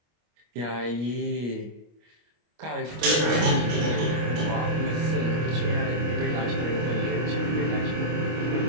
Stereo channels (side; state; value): left; late; 25 ms